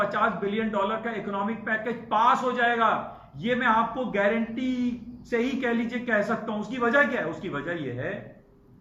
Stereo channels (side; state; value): both; identical; correlation 1.00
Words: बिलियन डॉलर का इकोनॉमिक पैकेज पास हो जाएगा। ये मैं आपको गारंटी से ही कह लीजिए कह सकता हूं। उसकी वजह क्या है? उसकी वजह यह है